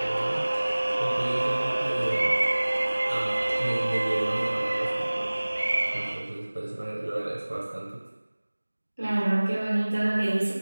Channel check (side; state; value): both; inverted; correlation -1.00